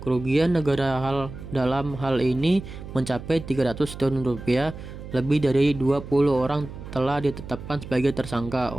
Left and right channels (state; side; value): noise; right; hum, 12 dB below the sound